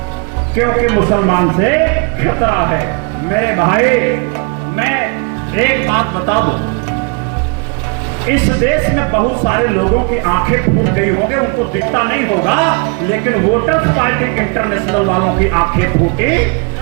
क्योंकि मुसलमान से खतरा है। मेरे भाई, मैं एक बात बता दूं, इस देश में बहुत सारे लोगों की आंखें फूट गई होंगी, उनको दिखता नहीं होगा, लेकिन वोटर्स पार्टी इंटरनेशनल वालों की आंखें फूटी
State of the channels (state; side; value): quieter; left; 32.9 dB